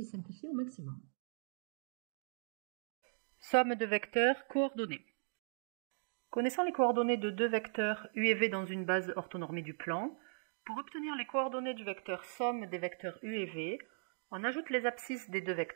simplifiée au maximum. Somme de vecteurs coordonnés. Connaissant les coordonnées de deux vecteurs U et V dans une base orthonormée du plan, pour obtenir les coordonnées du vecteur somme des vecteurs U et V, on ajoute les abscisses des deux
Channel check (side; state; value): left; silent; digital silence